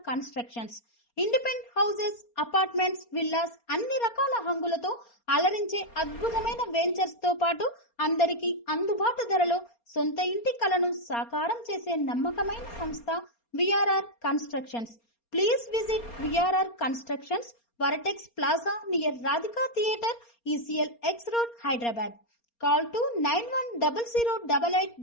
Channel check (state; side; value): late; right; 4.3 ms